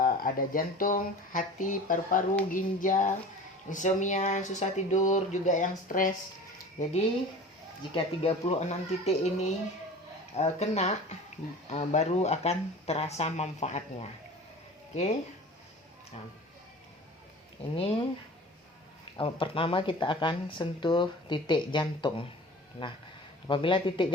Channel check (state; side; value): normal; both; correlation 0.39